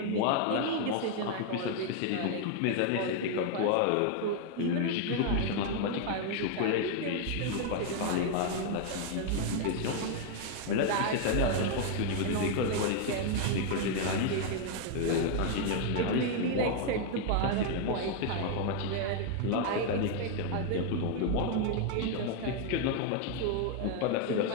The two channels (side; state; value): both; different; correlation 0.00